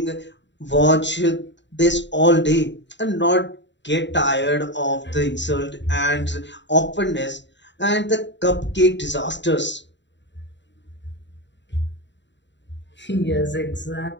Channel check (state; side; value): late; right; 0.52 ms